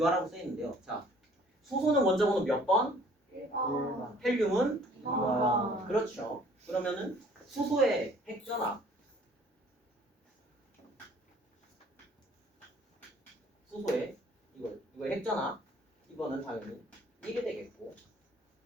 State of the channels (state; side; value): normal; both; correlation 0.56